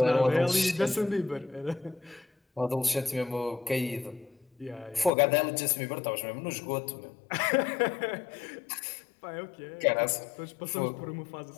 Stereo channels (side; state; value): right; drops out; at 5.1 s